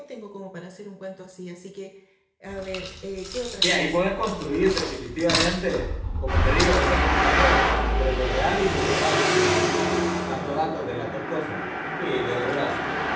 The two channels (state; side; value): identical; both; correlation 1.00